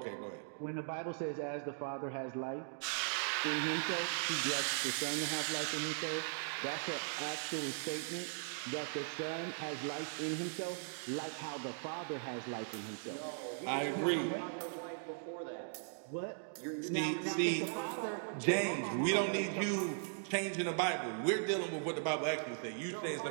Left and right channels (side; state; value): left; silent; digital silence